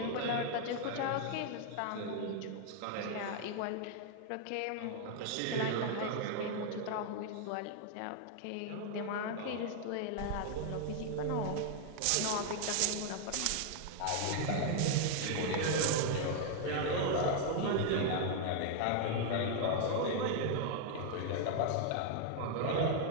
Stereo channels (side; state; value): both; different; correlation 0.00